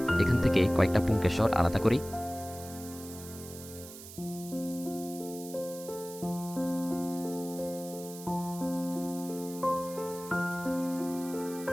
এখান থেকে কয়েকটা পুংকেশর আলাদা করি।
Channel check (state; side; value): noise; right; hiss, 14 dB below the sound